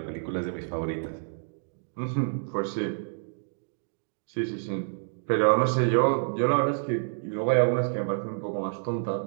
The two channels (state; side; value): silent; left; digital silence